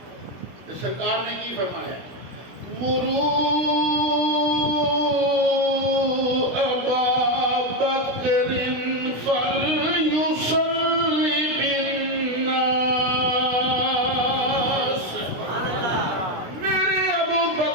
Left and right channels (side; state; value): left; late; 16 ms